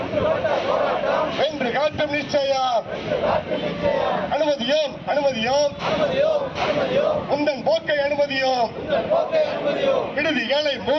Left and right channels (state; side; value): identical; both; correlation 1.00